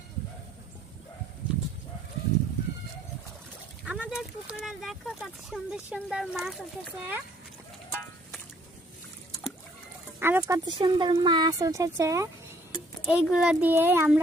আমাদের পুকুরে দেখো কত সুন্দর সুন্দর মাছ উঠেছে, আরো কত সুন্দর মাছ উঠেছে। এইগুলো দিয়ে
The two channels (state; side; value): normal; both; correlation 0.62